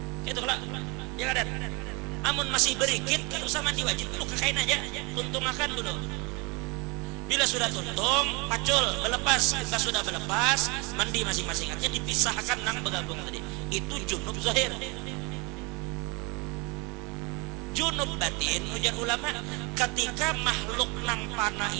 Itu lah, ya kada. Amun masih berikit, kan usah mandi wajib dulu, kekain aja, tuntung makan dulu. Bila sudah tuntung, pacul, berlepas. Kita sudah berlepas, mandi masing-masing aja, dipisahkan nang bergabung tadi. Itu junub zahir. Junub batin, ujar ulama, ketika makhluk nang panah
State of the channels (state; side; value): quieter; left; 28.5 dB